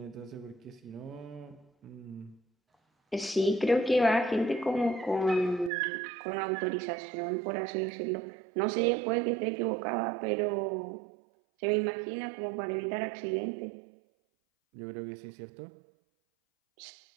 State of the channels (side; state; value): left; drops out; at 5.7 s